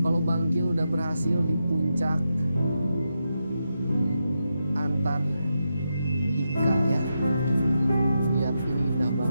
Bangkil udah berhasil di puncak Antartika ya. Lihat ini indah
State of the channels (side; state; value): both; inverted; correlation -0.86